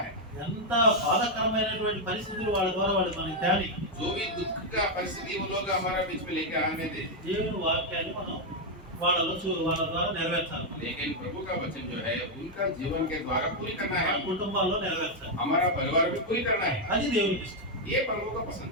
है, ఎంత బాధాకరమైనటువంటి పరిస్థితులు వాళ్ళ ద్వారా వాళ్ళు మనకి తేలి, जो भी दुख का परिस्थिति वो लोग हमारे बीच में लेके आने दे, దేవుని వాక్యాన్ని మనం వాళ్ళ ద్వారా నెరవేర్చాలి. लेकिन प्रभु का वचन जो है उनका जीवन के द्वारा पूरी करना మన है, కుటుంబాల్లో నెరవేర్చాలి. हमारा परिवार भी पूरी करना है। అది దేవునికి ఇష్టం. ये प्रभु का पसंद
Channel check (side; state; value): both; normal; correlation 0.00